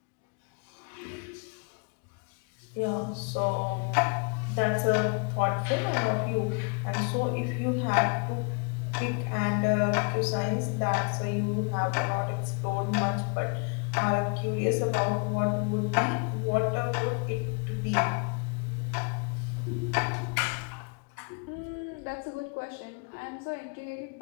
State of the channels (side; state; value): right; quieter; 34.4 dB